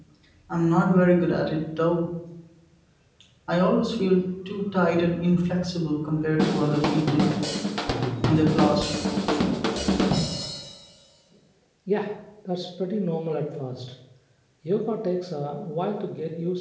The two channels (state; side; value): identical; both; correlation 1.00